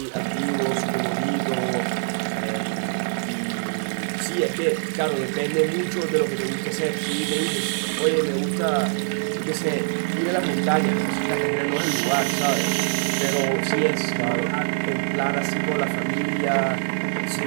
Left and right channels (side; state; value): left; silent; 55 dB below the other